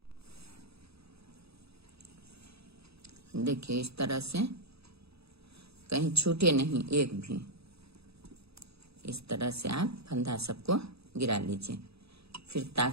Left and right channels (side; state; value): left; late; 0.78 ms